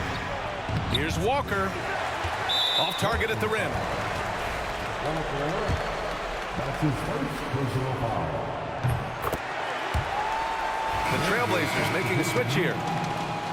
Here's Walker. Off target at the rim. That's his first personal foul. The Trailblazers making a switch here.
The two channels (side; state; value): both; identical; correlation 1.00